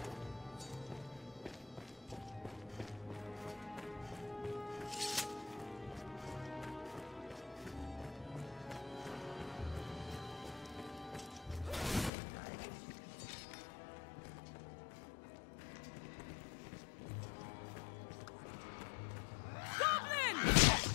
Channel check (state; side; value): drops out; right; at 12.1 s